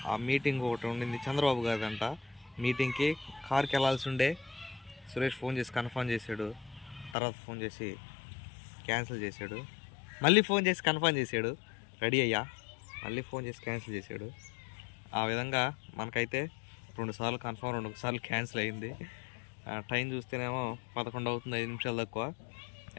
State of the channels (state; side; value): drops out; right; at 7.2 s